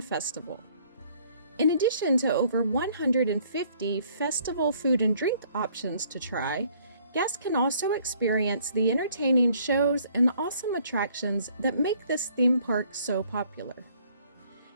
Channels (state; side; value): inverted; both; correlation -0.61